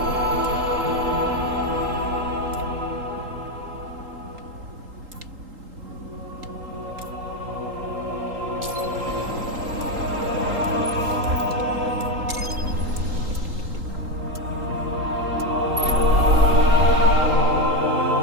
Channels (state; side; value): late; left; 3.8 ms